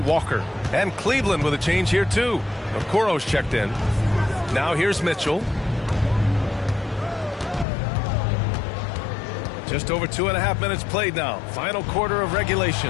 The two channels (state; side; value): drops out; right; at 7.7 s